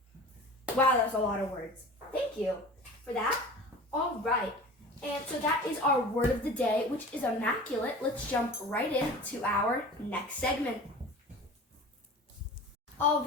Wow, that was a lot of words. Thank you for that. All right, and so that is our word of the day, which is immaculate. Let's jump right into our next segment. All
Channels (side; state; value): both; normal; correlation 0.38